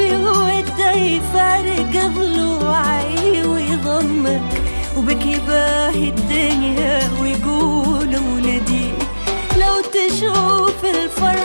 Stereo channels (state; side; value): inverted; both; correlation -1.00